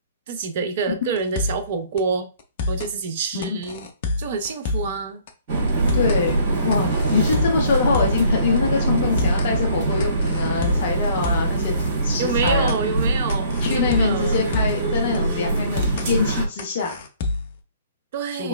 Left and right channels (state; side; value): inverted; both; correlation -0.59